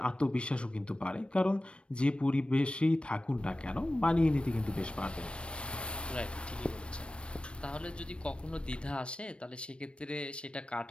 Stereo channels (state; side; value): late; right; 0.058 ms